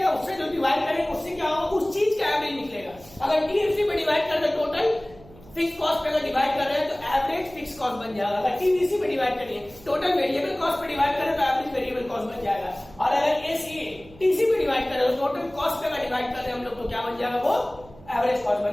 उससे जो डिवाइड करेंगे उससे क्या होगा, उस चीज का एवरेज निकलेगा। अगर टीएफसी पे डिवाइड कर दे टोटल फिक्स कॉस्ट पे अगर डिवाइड कर रहे हैं तो एवरेज फिक्स कॉस्ट बन जाएगा। अगर टीवीसी पे डिवाइड करेंगे टोटल वेरिएबल कॉस्ट पे डिवाइड करें तो एवरेज वेरिएबल कॉस्ट बन जाएगा। और अगर एसीए टीसी पे डिवाइड करें तो टोटल कॉस्ट पे अगर डिवाइड कर रहे हैं हम लोग तो क्या बन जाएगा, वो एवरेज कॉस्ट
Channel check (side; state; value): right; noise; hum, 22 dB below the sound